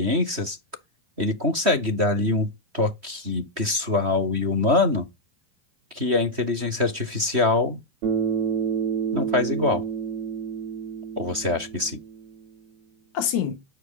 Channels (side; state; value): left; late; 3.1 ms